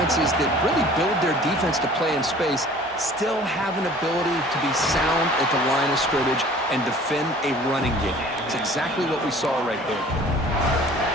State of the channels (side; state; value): both; normal; correlation 0.49